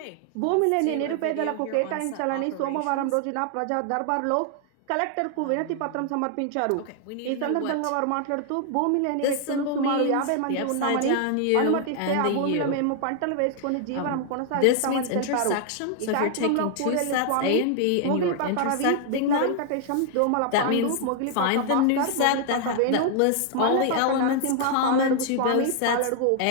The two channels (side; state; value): both; different; correlation 0.00